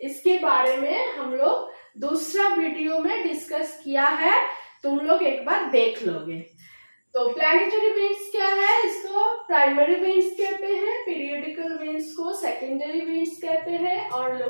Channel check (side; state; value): both; inverted; correlation -1.00